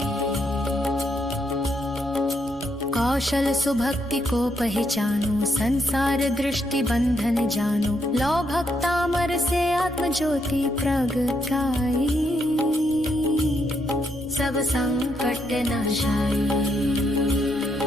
कौशल सुभक्ति को पहचानो, संसार दृष्टि बंधन जानो, लो भक्तामर से आत्म ज्योति प्रगटाई, सब संकट नाशाय।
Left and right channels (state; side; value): normal; both; correlation 0.77